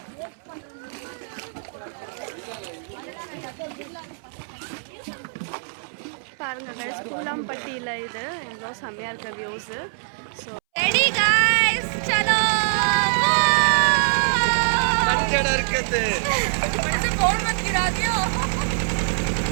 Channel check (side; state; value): left; silent; 63 dB below the other